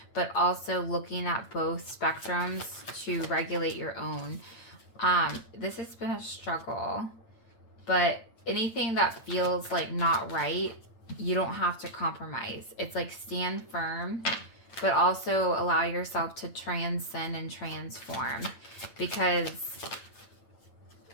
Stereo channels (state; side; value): late; right; 8.9 ms